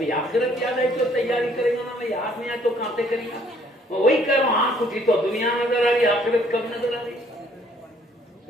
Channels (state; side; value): normal; both; correlation 0.63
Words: آخرت یاد آئی تو تیاری کرے گا نا، میں یاد نہیں آئے تو کہاں سے کرے گا. وہی کہہ رہا ہوں، آنکھ اٹھی تو دنیا نظر آ رہی، آخرت کب نظر آ رہی؟